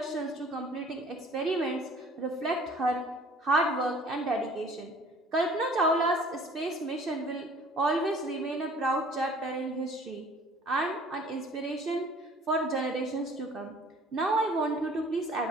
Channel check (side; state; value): both; normal; correlation 0.51